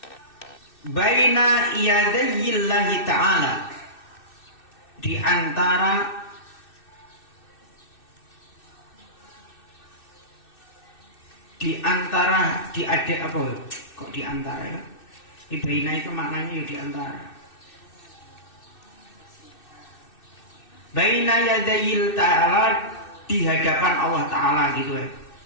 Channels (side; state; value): right; late; 2.6 ms